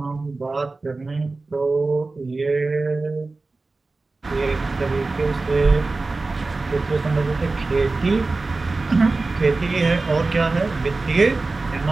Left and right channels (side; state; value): left; quieter; 3.6 dB